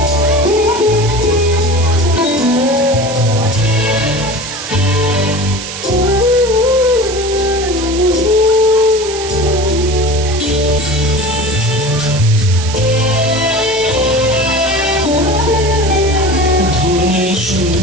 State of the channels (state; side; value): noise; right; hiss, 9 dB below the sound